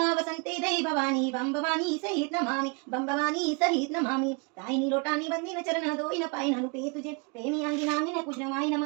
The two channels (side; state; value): left; quieter; 32.6 dB